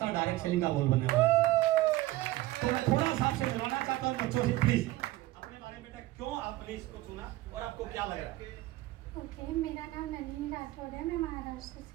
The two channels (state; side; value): quieter; left; 17.3 dB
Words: डायरेक्ट सेलिंग का बोल बनने वाला है। तो मैं थोड़ा सा आपसे मिलवाना चाहता हूं बच्चों से, प्लीज अपने बारे में बेटा, क्यों आपने इसको चुना और आपको क्या लग रहा है? ओके, मेरा नाम नलिनी राठौर है, मैं महाराष्ट्र